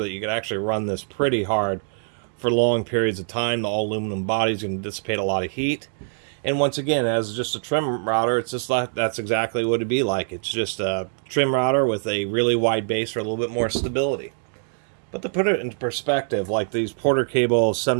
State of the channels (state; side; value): silent; left; digital silence